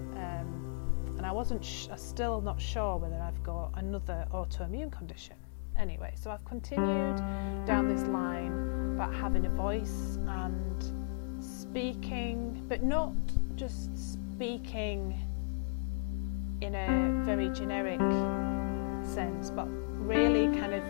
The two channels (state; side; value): silent; right; digital silence